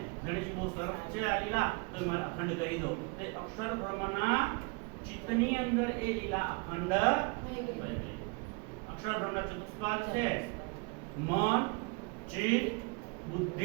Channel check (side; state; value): left; quieter; 29.9 dB